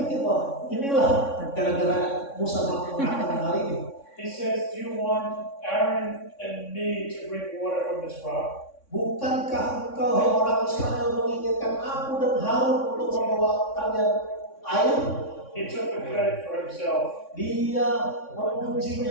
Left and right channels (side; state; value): right; late; 3.6 ms